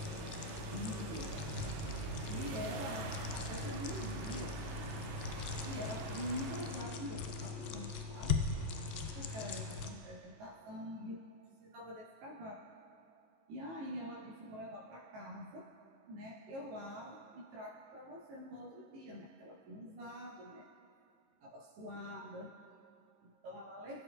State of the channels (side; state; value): left; late; 18 ms